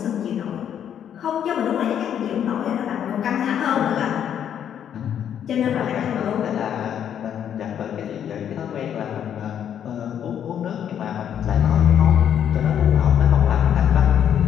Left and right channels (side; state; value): right; quieter; 9.3 dB